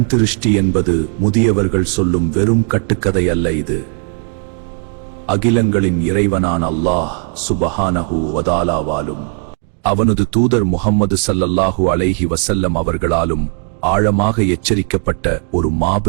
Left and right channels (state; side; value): quieter; left; 38.6 dB